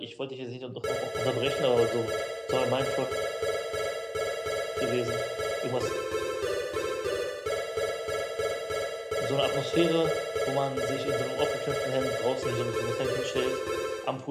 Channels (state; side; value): identical; both; correlation 1.00